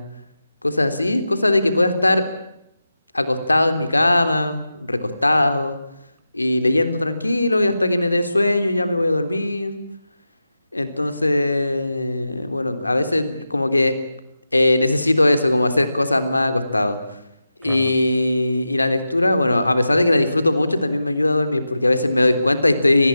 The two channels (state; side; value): inverted; both; correlation -0.91